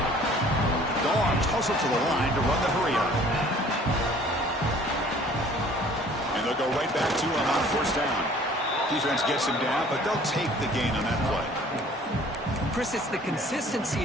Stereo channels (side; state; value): both; normal; correlation 0.53